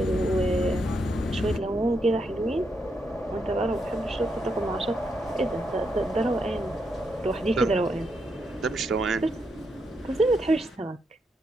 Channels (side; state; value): both; normal; correlation 0.80